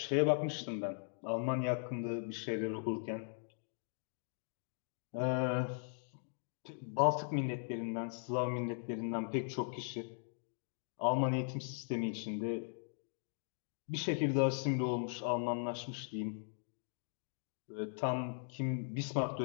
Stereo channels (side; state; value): right; silent; digital silence